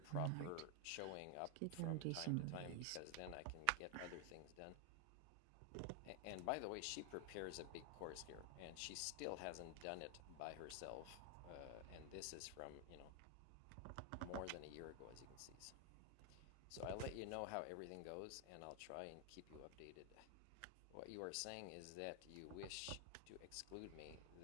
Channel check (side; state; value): both; different; correlation 0.00